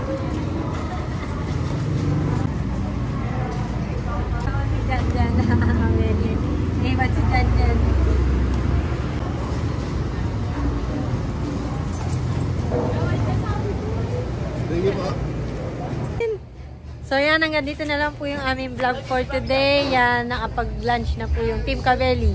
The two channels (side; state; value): both; identical; correlation 1.00